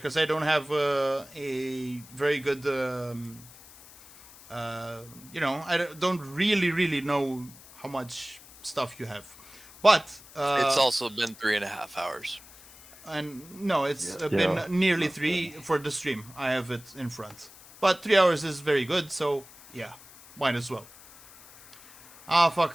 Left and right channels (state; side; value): noise; left; hiss, 21 dB below the sound